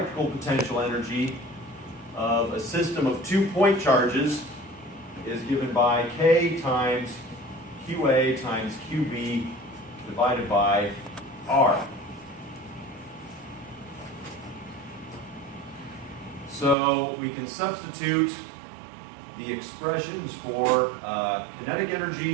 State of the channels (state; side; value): drops out; left; at 16.8 s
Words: potential energy of a system of 2 point charges is given by K times QA times QB divided by R. So we can substitute the expressions for kinetic